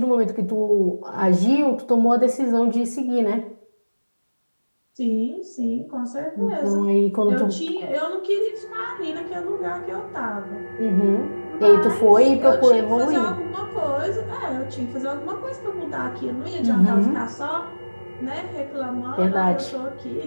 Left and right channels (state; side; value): inverted; both; correlation -1.00